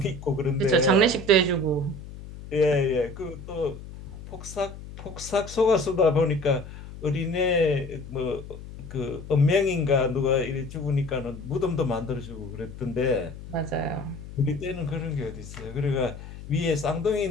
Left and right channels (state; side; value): noise; left; hum, 13 dB below the sound